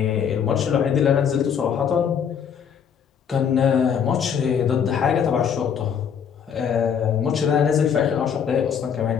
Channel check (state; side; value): quieter; right; 7.6 dB